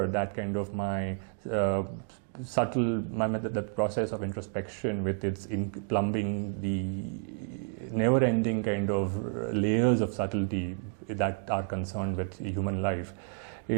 that kind of my the process of introspection with its plumbing the never-ending kind of layers of subtlety that are concerned with human life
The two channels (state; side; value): silent; left; digital silence